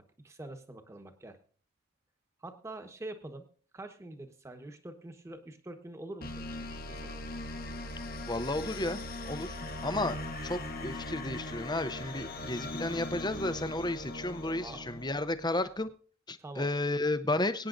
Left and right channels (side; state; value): both; normal; correlation 0.53